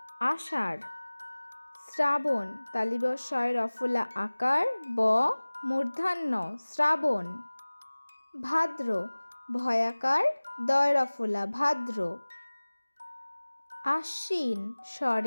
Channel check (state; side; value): inverted; both; correlation -1.00